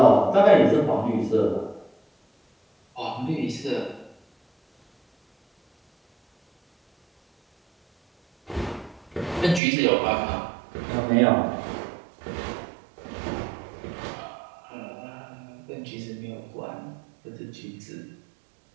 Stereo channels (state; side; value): drops out; left; at 9.6 s